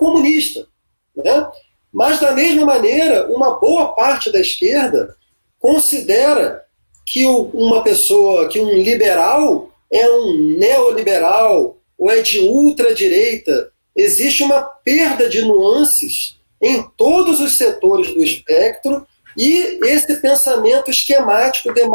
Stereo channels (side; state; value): both; inverted; correlation -1.00